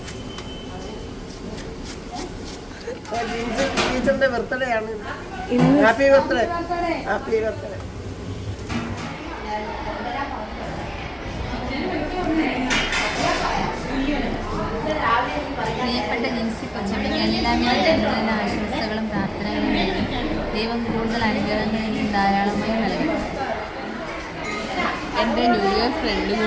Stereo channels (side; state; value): both; identical; correlation 1.00